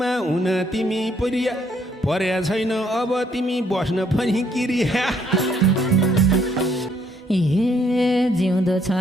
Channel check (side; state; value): both; normal; correlation 0.69